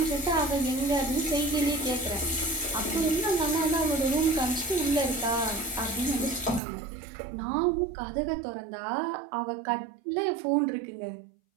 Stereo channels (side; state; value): left; drops out; at 6.6 s